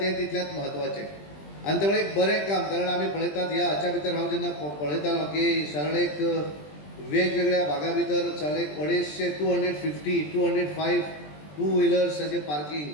तितलेंच म्हत्वाचें. आनी त्यामुळे एक बरें काम, कारण आमी पळयतात ह्या हाच्या भितर हांव जेन्ना पळयतालो की सरळ एक वेगवेगळ्या भागा भितर सरळ एक 205 टू व्हिलर्साचें पार्किंग,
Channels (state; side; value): late; right; 20 ms